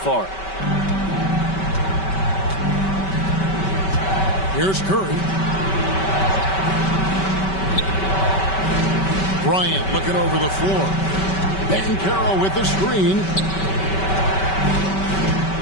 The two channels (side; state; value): right; late; 5.2 ms